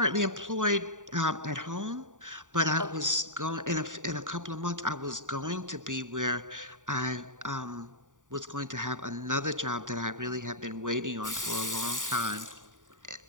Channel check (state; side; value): late; left; 0.87 ms